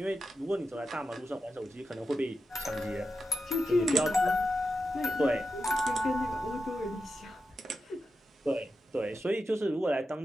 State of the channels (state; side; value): normal; both; correlation 0.89